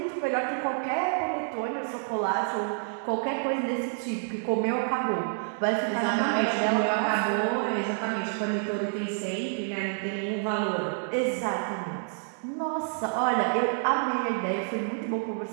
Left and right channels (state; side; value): silent; left; digital silence